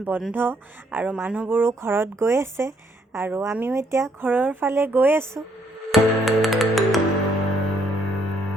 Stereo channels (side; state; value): both; normal; correlation 0.69